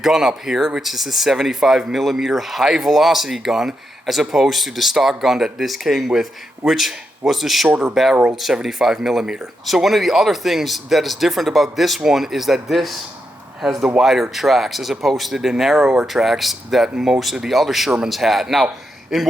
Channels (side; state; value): both; normal; correlation 0.84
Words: up here, which is a 75mm high velocity gun, as opposed to the stock gun that this came with, which was the shorter barreled 75mm. So one of the other things that is different about this one is that this has the wider tracks as opposed to the narrower tracks that most of the other Shermans had. Now, in